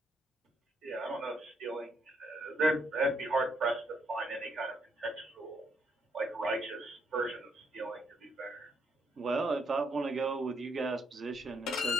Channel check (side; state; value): both; normal; correlation 0.74